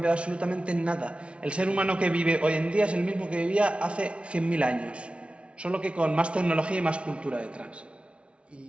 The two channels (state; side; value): late; left; 0.060 ms